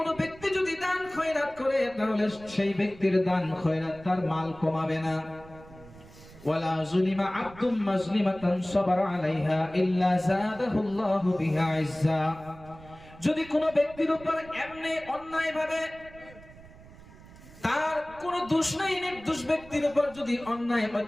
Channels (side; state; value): right; noise; rumble, 20 dB below the sound